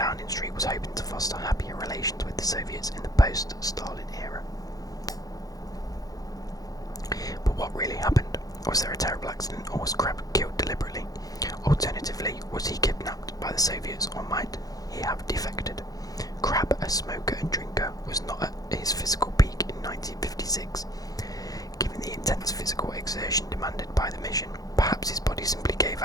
Street was hoping to foster happier relations with the Soviets in the post-Stalin era. But what really happened? Was there a terrible accident, or was Crabb killed deliberately? Alternatively, was he kidnapped by the Soviets, or might he have defected? Crabb, a smoker and drinker, was not at his physical peak in 1956. Given the intense physical exertion demanded by the mission, perhaps his body simply gave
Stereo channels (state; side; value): late; right; 0.18 ms